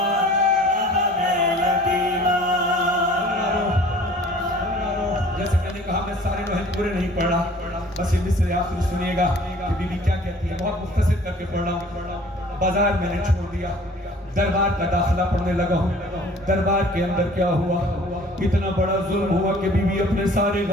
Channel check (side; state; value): both; normal; correlation 0.50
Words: बाबा मैं यतीम। जैसे मैंने कहा मैं सारे लोहे पूरे नहीं पढ़ रहा, बस ये मिसरे आखिर सुनिएगा कि बीबी क्या कहती है, बहुत मुख्तसर करके पढ़ रहा हूँ। बाजार मैंने छोड़ दिया, दरबार का दाखिला पढ़ने लगा हूँ। दरबार के अंदर क्या हुआ, इतना बड़ा जुल्म हुआ कि बीबी अपने सारे